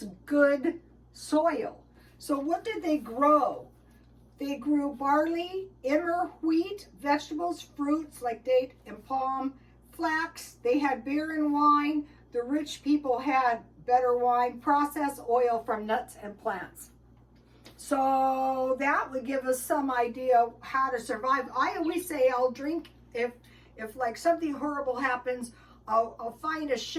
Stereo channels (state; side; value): identical; both; correlation 1.00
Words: good soil. So what did they grow? They grew barley, emmer, wheat, vegetables, fruits like date and palm, flax. They had beer and wine. The rich people had better wine, processed oil from nuts and plants. So that would give us some idea how to survive. I always say I'll drink if like something horrible happens. I'll find a